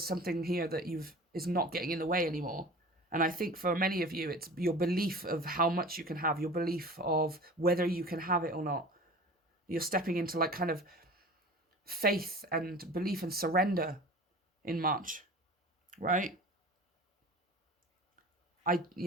something here that is not getting in the way anymore. And I think for many of you, it's your belief of how much you can have, your belief of whether you can have it or not. You're stepping into like kind of faith and belief and surrender in March, right? I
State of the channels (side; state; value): both; normal; correlation 0.39